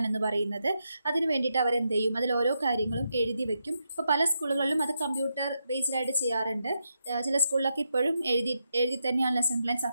എന്ന് പറയുന്നത്. അതിന് വേണ്ടിയിട്ട് അവരെന്ത് ചെയ്യും, അതിൽ ഓരോ കാര്യങ്ങളും എഴുതി വെക്കും. ഇപ്പോൾ പല സ്കൂളുകളിലും അത് കമ്പ്യൂട്ടർ ബേസ്ഡായിട്ട് ചെയ്യാറുണ്ട്. ചില സ്കൂളിലൊക്കെ ഇപ്പോഴും എഴുതി തന്നെയാണ് ലെസൺ പ്ലാൻ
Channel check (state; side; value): inverted; both; correlation -0.84